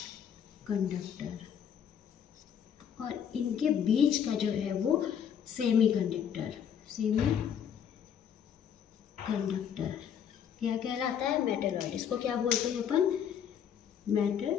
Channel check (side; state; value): right; quieter; 8.5 dB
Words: conductor. और इनके बीच का जो है वो सेमी कंडक्टर, सेमी कंडक्टर क्या कहलाता है? मेटलॉइड। इसको क्या बोलते हैं अपन?